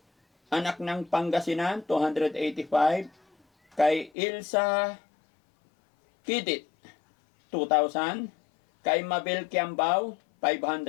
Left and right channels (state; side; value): drops out; right; at 4.1 s